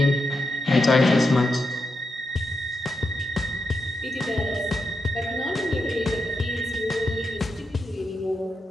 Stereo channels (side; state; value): both; normal; correlation 0.85